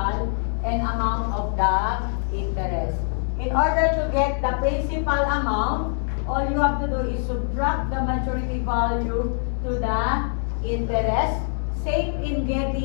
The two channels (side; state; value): right; silent; digital silence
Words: and amount of the interest. In order to get the principal amount, all you have to do is subtract the maturity value to the interest. Same in